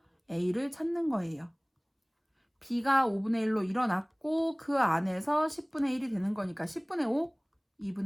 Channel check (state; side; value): identical; both; correlation 1.00